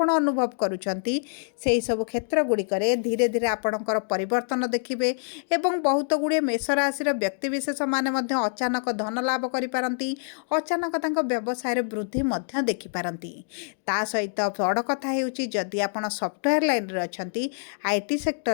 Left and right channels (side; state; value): right; silent; digital silence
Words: ଅନୁଭବ କରୁଛନ୍ତି, ସେହିସବୁ କ୍ଷେତ୍ର ଗୁଡ଼ିକରେ ଧୀରେ ଧୀରେ ଆପଣଙ୍କର ପରିବର୍ତ୍ତନ ଦେଖିବେ ଏବଂ ବହୁତ ଗୁଡ଼ିଏ ମେଷ ରାଶିର ବ୍ୟକ୍ତିବିଶେଷମାନେ ମଧ୍ୟ ଅଚାନକ ଧନ ଲାଭ କରିପାରନ୍ତି, ଅଚାନକ ତାଙ୍କ ବ୍ୟବସାୟରେ ବୃଦ୍ଧି ମଧ୍ୟ ଦେଖିପାରନ୍ତି। ତା ସହିତ ବଡ଼ କଥା ହେଉଛି ଯଦି ଆପଣ ସଫ୍ଟୱେୟାର ଲାଇନ୍ରେ ଅଛନ୍ତି, IT